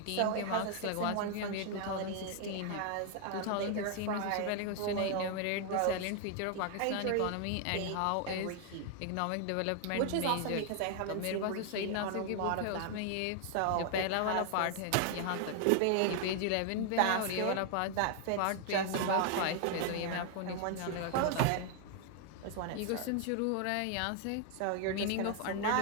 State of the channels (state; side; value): different; both; correlation 0.00